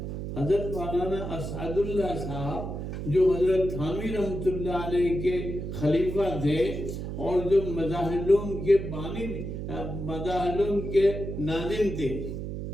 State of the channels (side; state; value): right; noise; hum, 6 dB below the sound